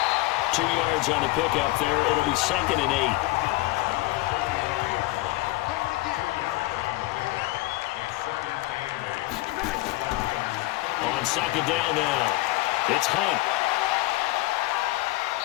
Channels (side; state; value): right; quieter; 19.5 dB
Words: 2 yards on the pickup there. It'll be 2nd and 8. On 2nd down now, it's Hunt.